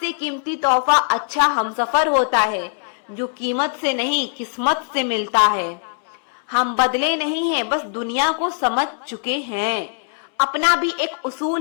कीमती तोहफा अच्छा हमसफर होता है, जो कीमत से नहीं किस्मत से मिलता है। हम बदले नहीं हैं, बस दुनिया को समझ चुके हैं। अपना भी एक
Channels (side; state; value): right; silent; 65 dB below the other